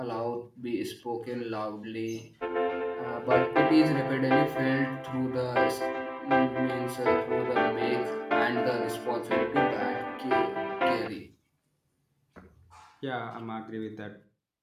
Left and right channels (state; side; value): identical; both; correlation 1.00